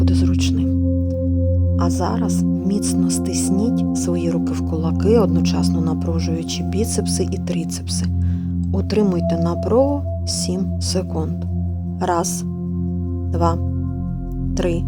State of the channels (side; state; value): both; identical; correlation 1.00